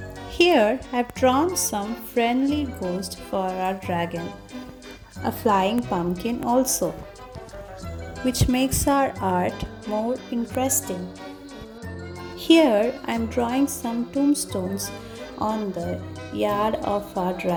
Here I've drawn some friendly ghost for our dragon, a flying pumpkin also, which makes our art more interesting. Here I'm drawing some tombstones on the yard of our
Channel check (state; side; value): identical; both; correlation 1.00